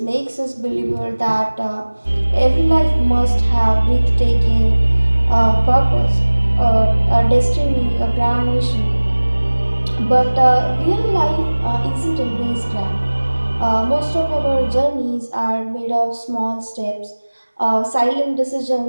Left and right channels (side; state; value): both; inverted; correlation -1.00